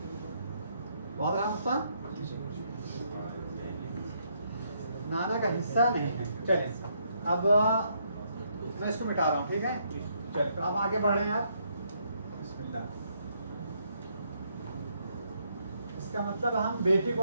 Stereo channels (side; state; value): both; inverted; correlation -0.73